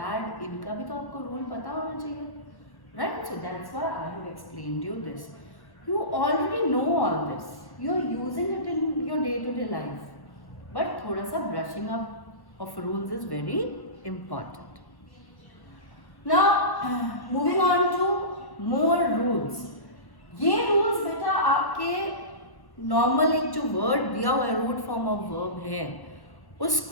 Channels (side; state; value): right; late; 1.1 ms